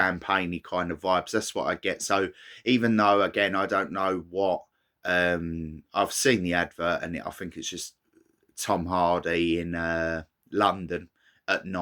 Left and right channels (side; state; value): both; identical; correlation 1.00